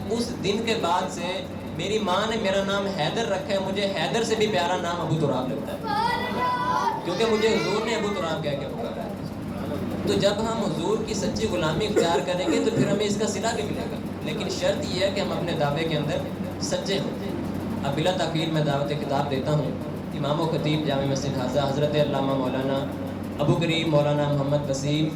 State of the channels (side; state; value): both; identical; correlation 1.00